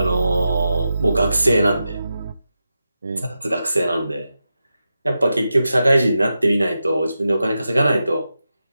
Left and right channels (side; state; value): both; inverted; correlation -0.90